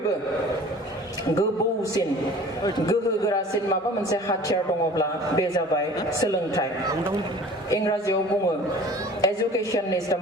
गोबौसिन गोहोगोरासिन माबा मोनसे हाथियार दङब्ला बे जाबाय सोलोंथाइ इंराजियाव बुङो education is the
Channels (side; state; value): both; normal; correlation 0.45